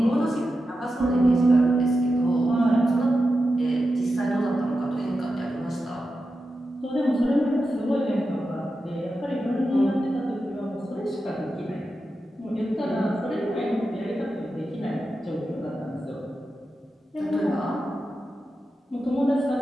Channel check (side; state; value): both; normal; correlation 0.90